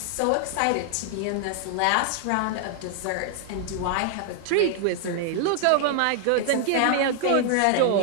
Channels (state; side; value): different; both; correlation 0.00